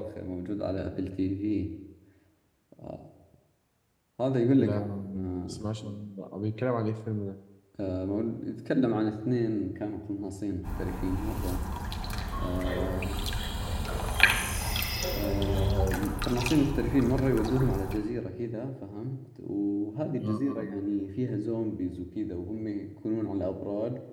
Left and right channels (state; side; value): identical; both; correlation 1.00